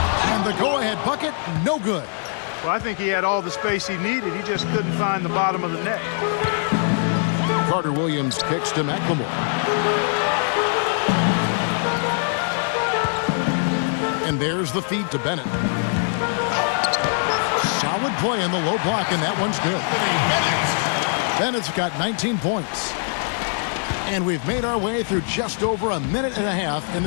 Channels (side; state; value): right; silent; 64 dB below the other